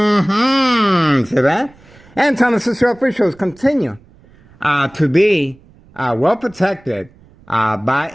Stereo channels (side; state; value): right; noise; rumble, 27 dB below the sound